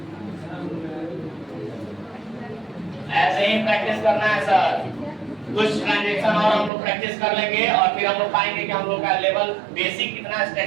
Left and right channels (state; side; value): drops out; left; at 6.7 s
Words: ऐसे ही प्रैक्टिस करना है सर। कुछ ट्रांजैक्शन और हम लोग प्रैक्टिस कर लेंगे और फिर हम लोग पाएंगे कि हम लोग का लेवल बेसिक कितना